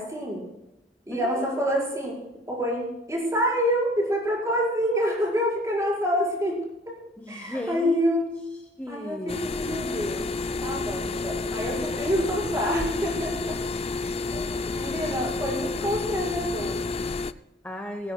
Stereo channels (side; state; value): both; normal; correlation 0.54